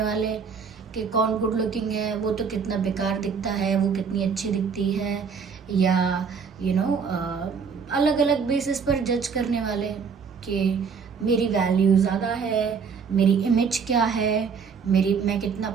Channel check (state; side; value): quieter; left; 5.9 dB